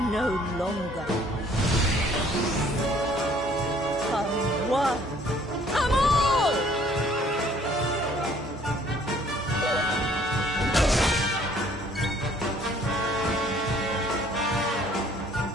no longer. Come one, come all!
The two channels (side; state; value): both; normal; correlation 0.59